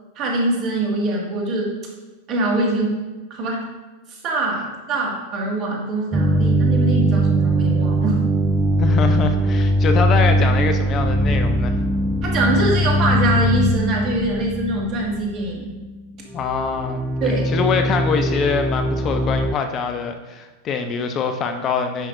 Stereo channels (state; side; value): normal; both; correlation 0.51